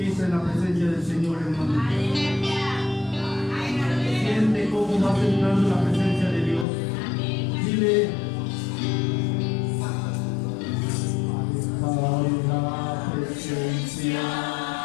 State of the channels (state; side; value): drops out; right; at 6.7 s